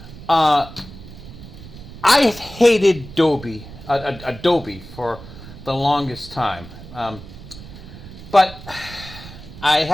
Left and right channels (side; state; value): right; noise; rumble, 15 dB below the sound